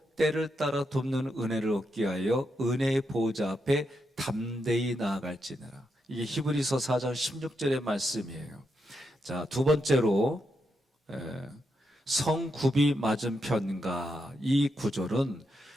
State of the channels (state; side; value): normal; both; correlation 0.83